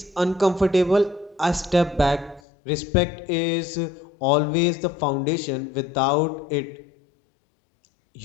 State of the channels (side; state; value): right; drops out; at 2.4 s